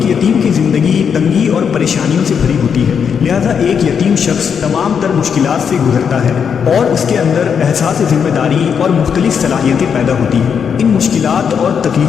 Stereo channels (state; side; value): quieter; right; 7.0 dB